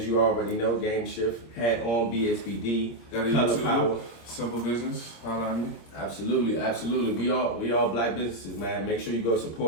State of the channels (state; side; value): late; right; 26 ms